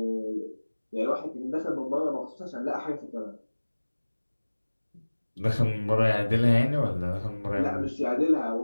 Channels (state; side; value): inverted; both; correlation -1.00